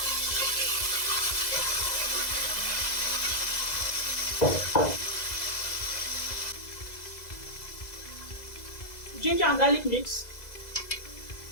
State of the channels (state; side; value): late; right; 2.0 ms